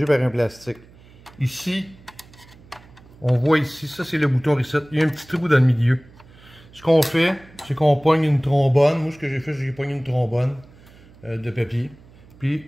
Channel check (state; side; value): noise; right; hum, 24 dB below the sound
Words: par un plastique. Ici, on voit ici, ça c'est le bouton reset, il y a un petit trou dans le milieu. Ce qu'on fait, c'est qu'on pogne une trombone. Moi, ce que j'ai fait, c'est que j'ai pogné une trombone de papier, puis